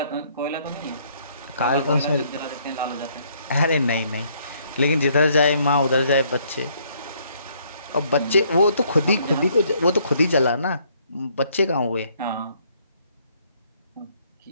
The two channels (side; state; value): both; inverted; correlation -0.66